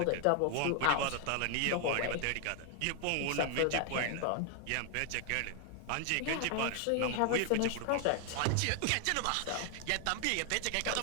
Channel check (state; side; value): different; both; correlation 0.00